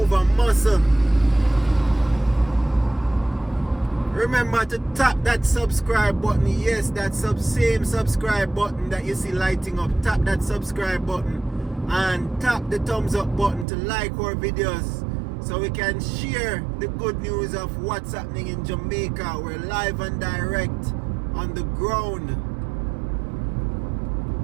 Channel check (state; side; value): drops out; left; at 13.7 s